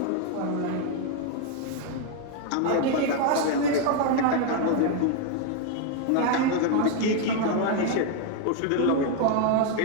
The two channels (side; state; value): both; different; correlation 0.00